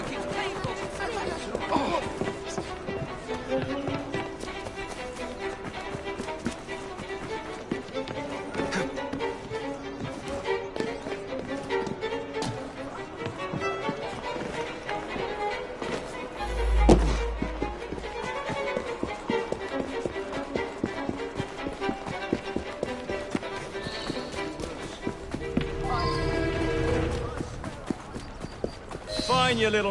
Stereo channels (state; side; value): identical; both; correlation 1.00